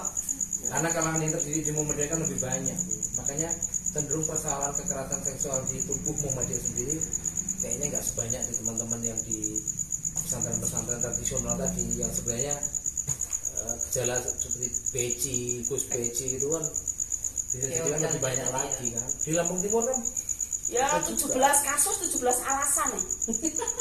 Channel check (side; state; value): both; identical; correlation 1.00